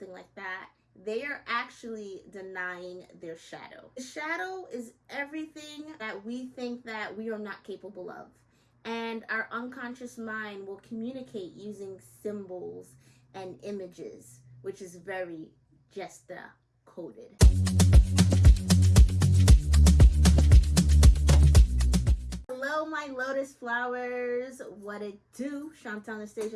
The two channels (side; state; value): both; identical; correlation 1.00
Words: like that, they are actually denying their shadow. The shadow is everything that we think that we are not capable of. And our unconscious mind will communicate using symbols and images, which is very Jyestha coded. Hello, my lotus flowers. What it do? Shontel